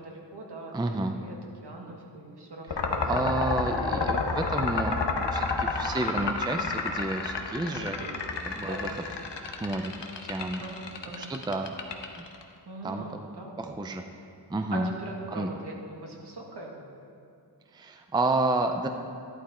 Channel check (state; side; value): normal; both; correlation 0.41